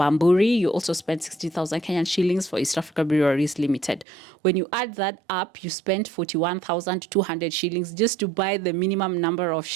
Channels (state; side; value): drops out; left; at 4.0 s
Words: You also spent 60,000 Kenyan shillings for East Africa Breweries Limited. When you add that up, you spent 41,200 shillings just to buy the minimum number of